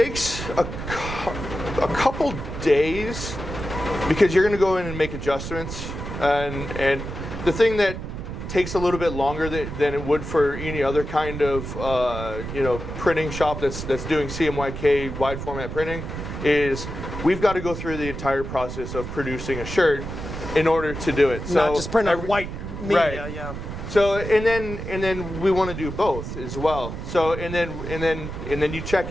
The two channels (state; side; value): noise; right; rumble, 7 dB below the sound